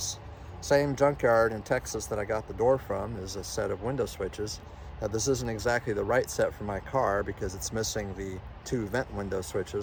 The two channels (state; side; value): identical; both; correlation 1.00